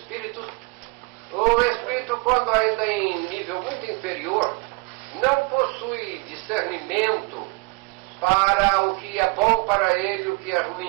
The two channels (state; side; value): quieter; left; 27.7 dB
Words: o espírito, quando ainda em nível muito inferior, não possui discernimento para o que é bom para ele e o que é